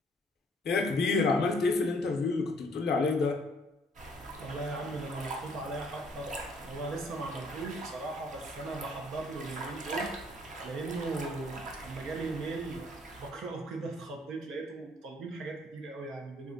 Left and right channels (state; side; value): normal; both; correlation 0.63